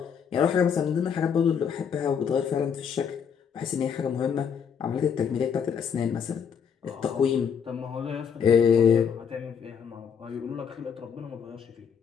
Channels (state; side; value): quieter; right; 7.2 dB